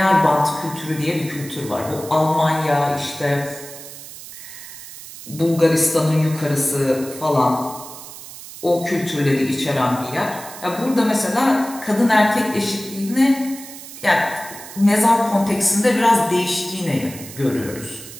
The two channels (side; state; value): right; noise; hiss, 14 dB below the sound